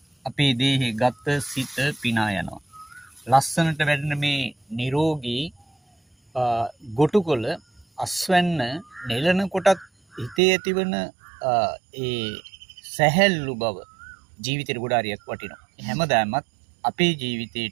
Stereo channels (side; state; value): left; drops out; at 10.4 s